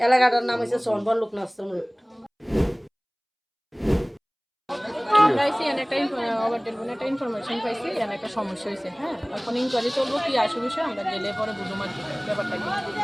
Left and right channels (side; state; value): both; identical; correlation 1.00